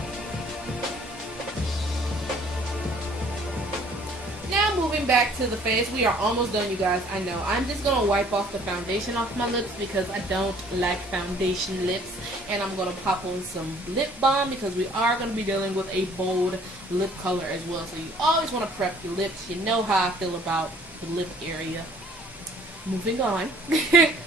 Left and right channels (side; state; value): both; normal; correlation 0.56